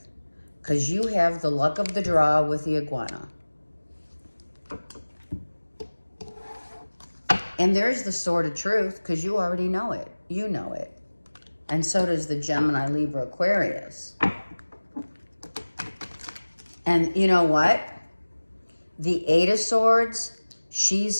Because you have the luck of the draw with the iguana. And there's the sword of truth, because you already know it. You know it. And so does the Gemini, Libra, Aquarius. And you know what? The Eight of Swords,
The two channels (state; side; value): inverted; both; correlation -1.00